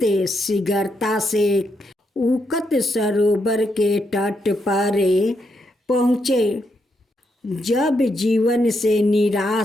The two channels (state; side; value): normal; both; correlation 0.80